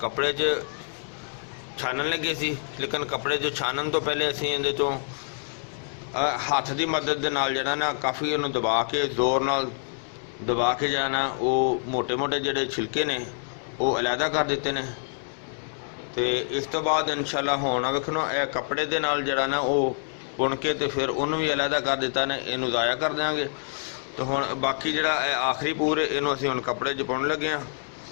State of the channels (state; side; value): silent; right; digital silence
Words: कपड़े च छानन लगे सी, लेकिन कपड़े जो छानन तो पहले असीं इहदे चों हत्थ की मदद दे नाल जिहड़ा ना काफ़ी इहनूं दबा के जोर नाल दबा के जाना वो मोटे मोटे जिहड़े छिलके ने वो अलहदा कर दिते ने। तो इस तो बाद इंशाअल्लाह हुण वेखो कपड़े दे नाल जिहड़ा ना वो बुन के तो फिर उन्होंने भी अलहदा कर दिता ने, इनू ज़ाया कर देंगे। तो हुण बाकी जिहड़ा आखिरी पूर इनू असीं हुण कपड़े च पाउण लगे हाँ।